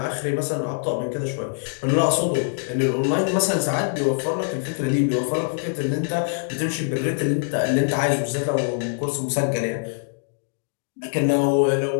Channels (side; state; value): right; silent; digital silence